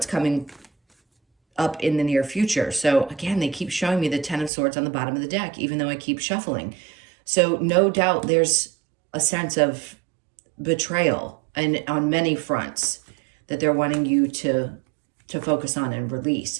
coming up in the near future. So again, they keep showing me the Ten of Swords on the bottom of the deck, even though I keep shuffling. So no doubt there's a sense of betrayal and on many fronts that they're wanting you to focus on and release.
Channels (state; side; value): drops out; left; at 4.5 s